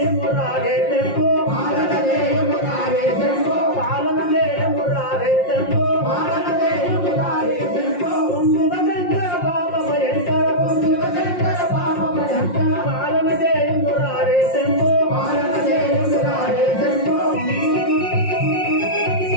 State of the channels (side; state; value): right; late; 5.6 ms